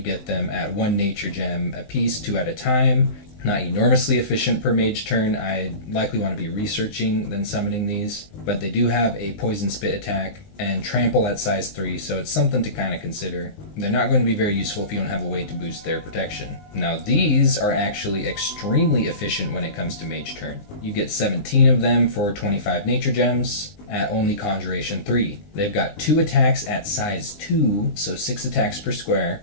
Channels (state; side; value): late; right; 19 ms